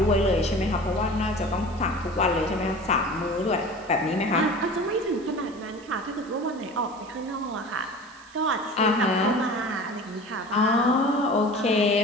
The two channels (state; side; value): noise; right; hiss, 24 dB below the sound